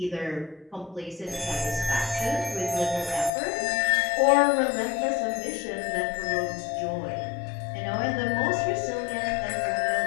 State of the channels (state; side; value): drops out; right; at 3.3 s